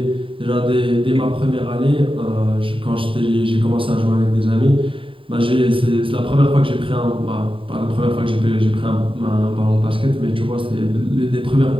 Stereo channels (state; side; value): late; left; 0.25 ms